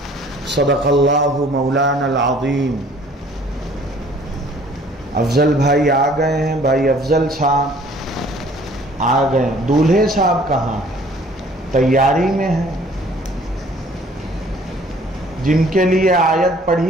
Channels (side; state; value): both; normal; correlation 0.55